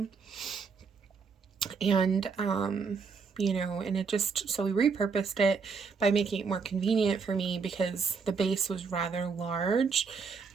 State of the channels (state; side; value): quieter; left; 5.3 dB